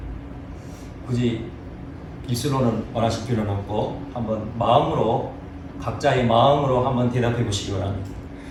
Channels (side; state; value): both; identical; correlation 1.00